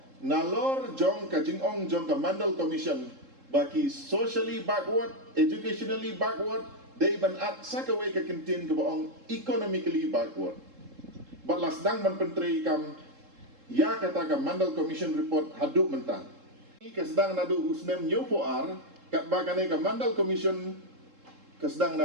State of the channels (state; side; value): late; left; 3.7 ms